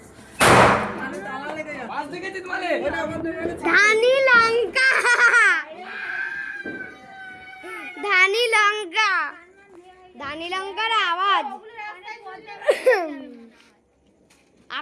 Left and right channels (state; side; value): identical; both; correlation 1.00